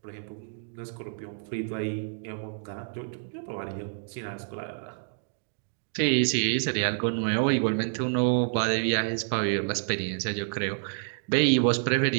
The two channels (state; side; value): silent; left; digital silence